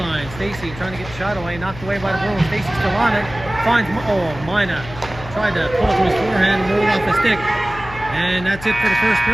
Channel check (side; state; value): left; noise; hum, 14 dB below the sound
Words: Stacy trying to get the shot away, knocked away by the Bruins. Stacy still on it. Finds, Mina tried to pull it to his forehand and roll off the stick. And that's it for the first